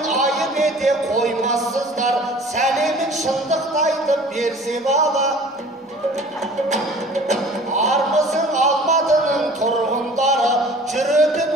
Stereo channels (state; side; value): normal; both; correlation 0.46